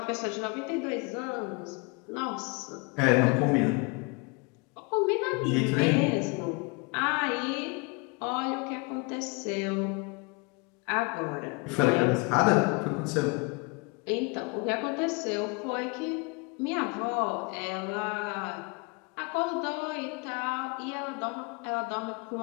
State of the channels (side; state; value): right; quieter; 29.8 dB